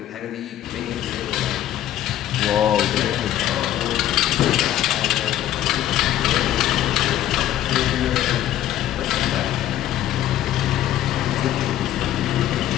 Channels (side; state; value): right; quieter; 12.5 dB